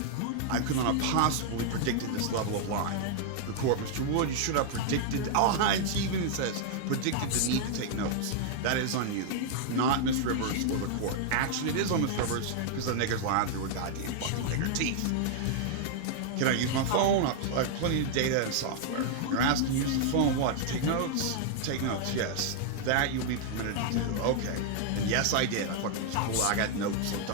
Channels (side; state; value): both; different; correlation 0.00